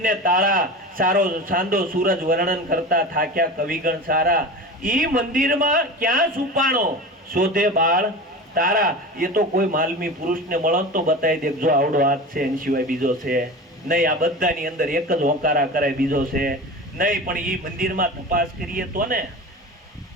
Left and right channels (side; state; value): both; normal; correlation 0.31